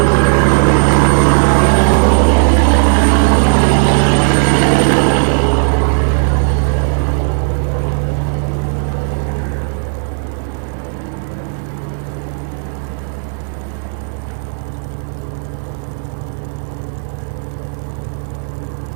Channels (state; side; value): silent; left; 56 dB below the other